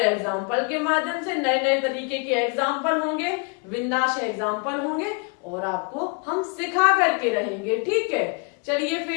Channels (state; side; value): quieter; right; 33.7 dB